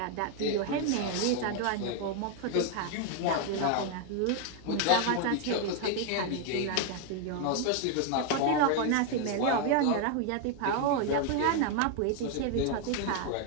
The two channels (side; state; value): both; different; correlation 0.00